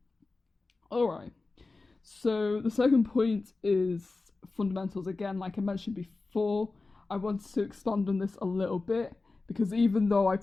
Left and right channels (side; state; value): right; quieter; 3.6 dB